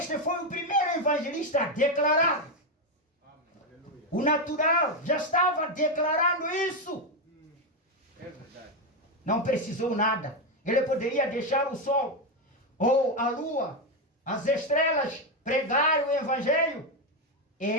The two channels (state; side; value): normal; both; correlation 0.07